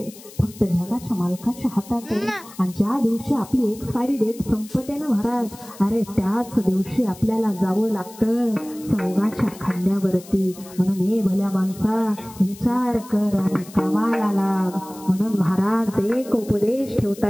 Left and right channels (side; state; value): left; noise; hiss, 19 dB below the sound